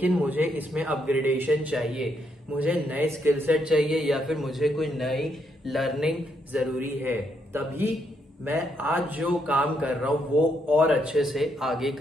मुझे इसमें अपग्रेडेशन चाहिए, मुझे नए स्किल सेट चाहिए या फिर मुझे कोई नई लर्निंग जरूरी है, तभी मैं आज जो काम कर रहा हूं वो और अच्छे से आगे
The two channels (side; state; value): both; normal; correlation 0.76